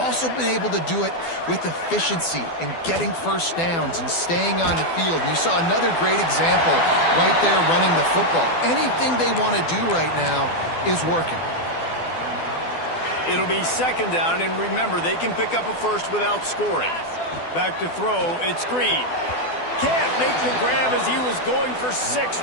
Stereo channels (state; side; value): late; right; 12 ms